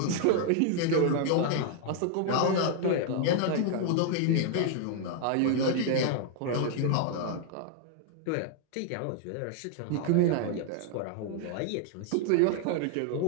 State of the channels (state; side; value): different; both; correlation 0.00